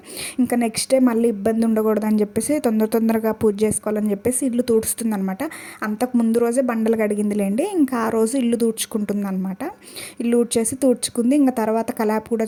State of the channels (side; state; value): both; identical; correlation 1.00